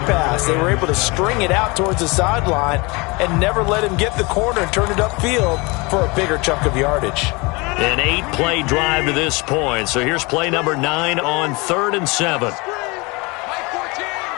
They were able to string it out towards the sideline and never let him get the corner and turn it upfield for a bigger chunk of yardage. An 8-play drive to this point. So here's play number 9 on 3rd and 7.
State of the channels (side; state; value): right; quieter; 26.4 dB